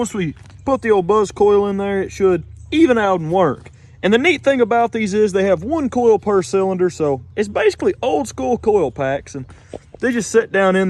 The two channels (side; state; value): both; identical; correlation 1.00